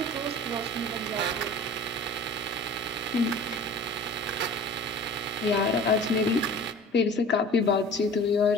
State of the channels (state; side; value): normal; both; correlation 0.42